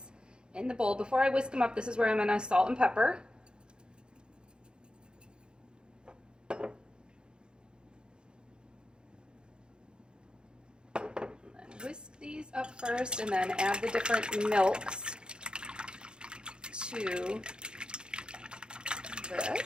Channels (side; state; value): left; late; 0.049 ms